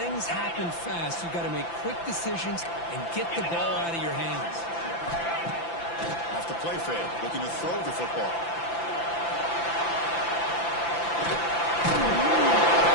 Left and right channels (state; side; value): late; right; 5.9 ms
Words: happen fast. You've got to make quick decisions and get the ball out of your hands. Off the play fake, looking to throw the football. The